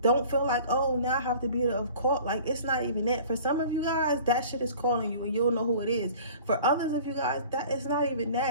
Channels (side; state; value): both; inverted; correlation -0.45